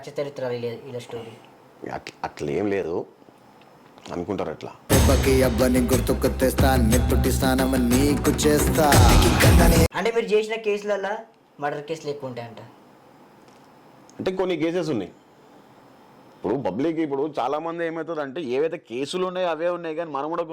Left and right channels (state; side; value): identical; both; correlation 1.00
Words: చరిత్ర ఇలా స్టోరీ అట్లా ఏం లేదు అనుకుంటారు. అట్లా గుర్తుకు తెస్తా, నీకు చేస్తా. అంటే మీరు చేసిన కేసులలో మర్డర్ కేసులు ఎక్కువ ఉంటాయంట. అంటే కొన్ని కేసెస్ ఉన్నాయి. ఇప్పుడు పబ్లిక్ ఇప్పుడు చాలా మంది ఏమవుతుంది అంటే ఏవైతే కేసులు ఉన్నాయో అవే ఉన్నాయి, కానీ మనం కూడా